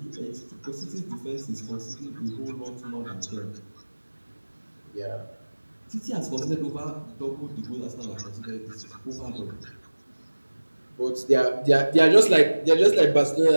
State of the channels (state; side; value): inverted; both; correlation -1.00